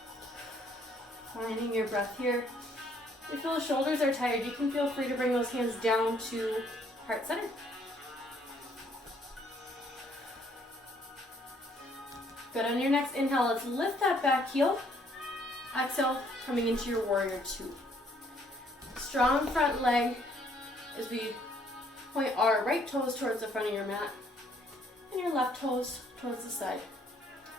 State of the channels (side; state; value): both; normal; correlation 0.65